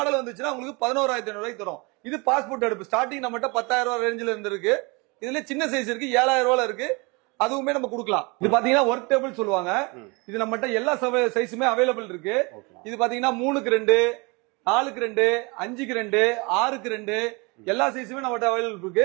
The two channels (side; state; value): left; quieter; 28.4 dB